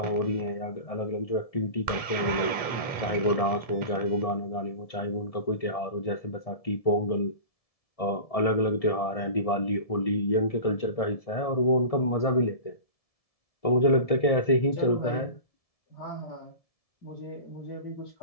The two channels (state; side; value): late; right; 1.7 ms